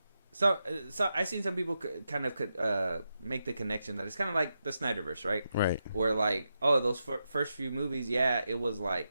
So I seen some people kind of make the connection that it's kind of like the Snyderverse, right? Right. Where like, oh, those first few movies, it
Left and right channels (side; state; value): both; inverted; correlation -0.87